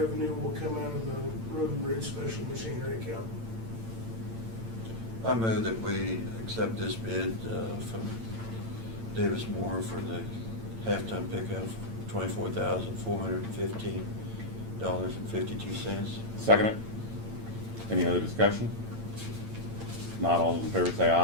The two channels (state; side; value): late; left; 8.9 ms